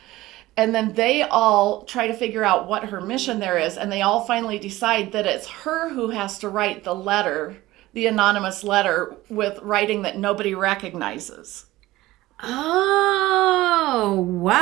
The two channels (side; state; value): left; quieter; 17.5 dB